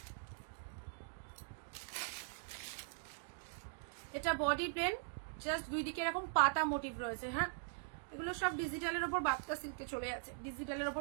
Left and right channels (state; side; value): silent; left; digital silence